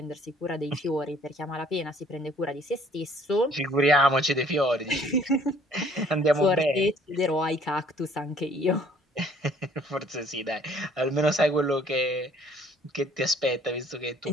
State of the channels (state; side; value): normal; both; correlation 0.58